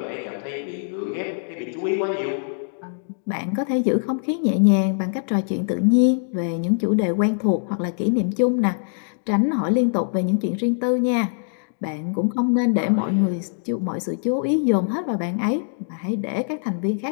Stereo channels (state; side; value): silent; right; digital silence